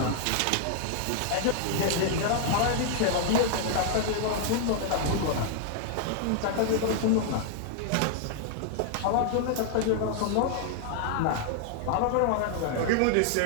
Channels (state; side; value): different; both; correlation -0.01